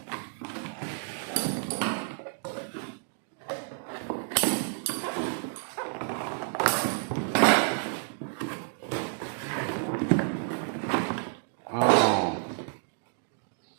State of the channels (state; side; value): silent; left; 58 dB below the other